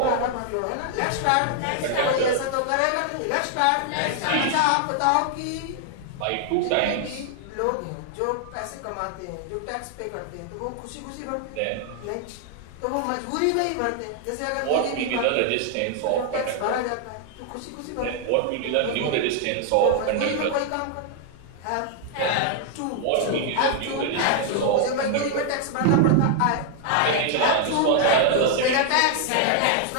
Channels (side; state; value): both; different; correlation 0.00